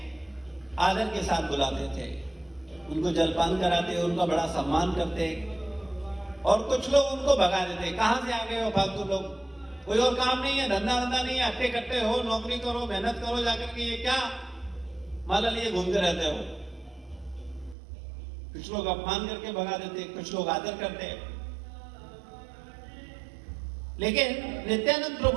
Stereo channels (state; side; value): drops out; left; at 17.8 s